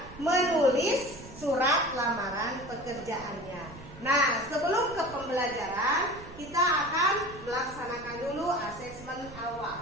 menulis surat lamaran pekerjaannya. Nah, sebelum ke pembelajaran, kita akan melaksanakan dulu asesmen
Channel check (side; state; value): right; noise; rumble, 17 dB below the sound